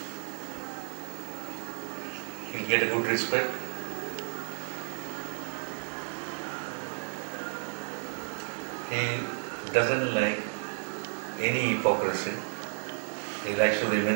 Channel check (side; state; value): left; silent; digital silence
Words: He will get a good respect. He doesn't like any hypocrisy. He likes to